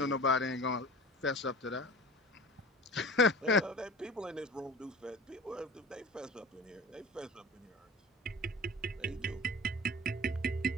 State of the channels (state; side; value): normal; both; correlation 0.38